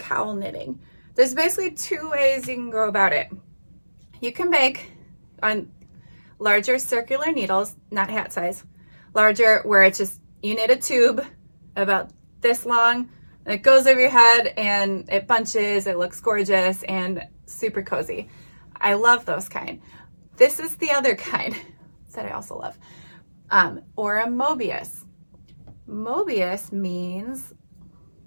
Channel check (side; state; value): both; inverted; correlation -1.00